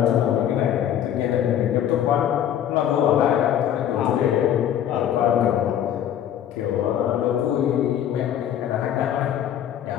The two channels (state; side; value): quieter; right; 10.4 dB